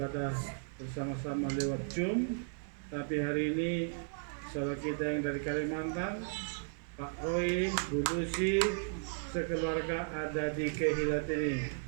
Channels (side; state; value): left; silent; digital silence